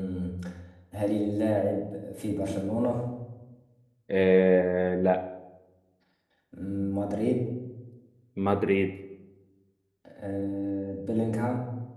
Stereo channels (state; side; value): identical; both; correlation 1.00